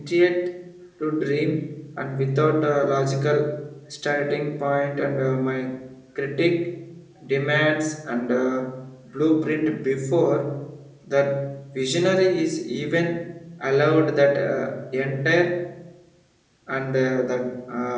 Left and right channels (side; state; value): both; identical; correlation 1.00